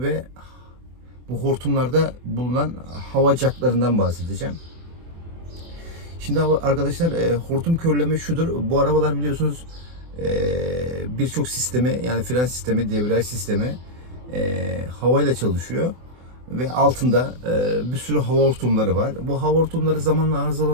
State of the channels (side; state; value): left; late; 24 ms